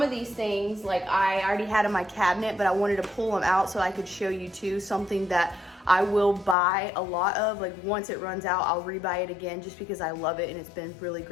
of these things, like I already had in my cabinet, but I wanted to pull them out so I could show you too, something that I will buy a lot of. Like once it runs out, I'll rebuy it again just because I love it and it's been really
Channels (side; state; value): right; drops out; at 6.6 s